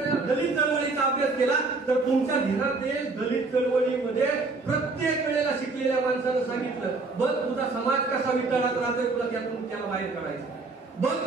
दलित चळवळीचा अभ्यास केला तर तुमच्या ध्यानात येईल, दलित चळवळीमध्ये प्रत्येक वेळेला शिकलेल्या माणसानं सांगितलं, बघ तुझा समाज कसा वितळात राहतोय, तुला त्यातून त्याला बाहेर काढायचं. बघ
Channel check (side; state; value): left; quieter; 3.7 dB